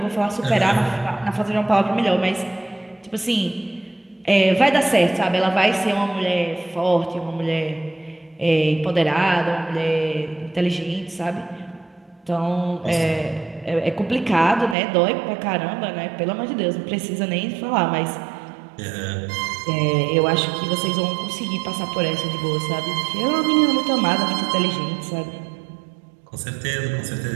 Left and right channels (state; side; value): drops out; left; at 14.8 s